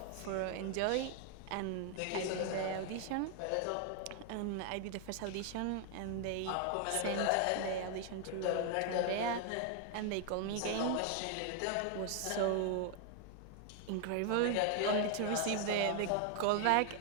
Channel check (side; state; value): both; different; correlation 0.00